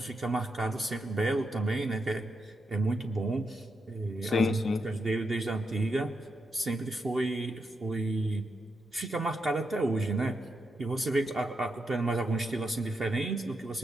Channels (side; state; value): both; normal; correlation 0.83